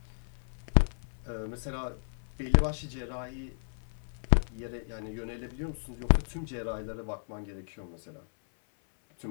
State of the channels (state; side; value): silent; right; 56 dB below the other